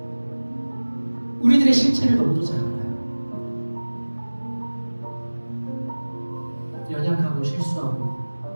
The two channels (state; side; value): inverted; both; correlation -1.00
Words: 우리들의 실체를 너무도 잘 알아요. 연약하고 실수하고